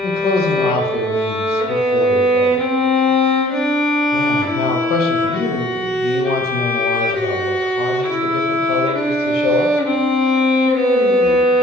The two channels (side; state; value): both; normal; correlation 0.57